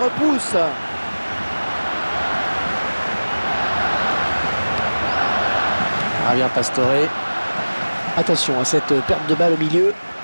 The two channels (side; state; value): both; inverted; correlation -1.00